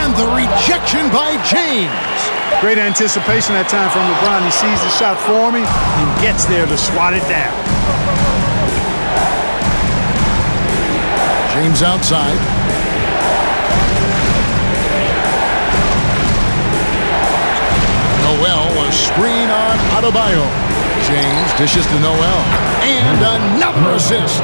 the rejection by James. Great anticipation that time from LeBron. He sees the shot forming and gets there to swat it down. James outside. Noel, a screen on Adebayo. James dishes to Noel. And another assist.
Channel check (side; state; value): both; inverted; correlation -1.00